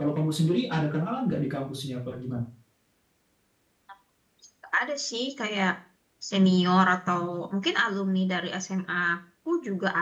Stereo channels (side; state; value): both; identical; correlation 1.00